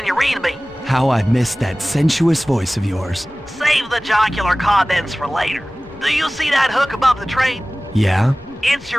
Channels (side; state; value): left; noise; rumble, 25 dB below the sound